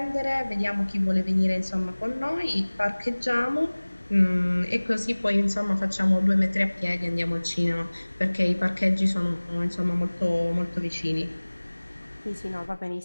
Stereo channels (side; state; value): both; inverted; correlation -1.00